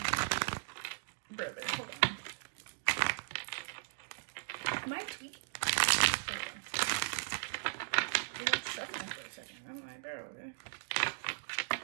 Brother, hold on. Am I tweaking? There we go. It went shuffling for a second. I'm like, bro.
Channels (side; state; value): left; silent; digital silence